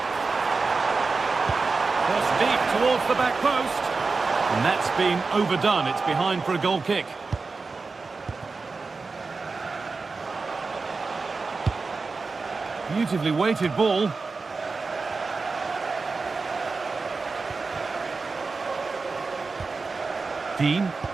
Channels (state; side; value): quieter; left; 4.2 dB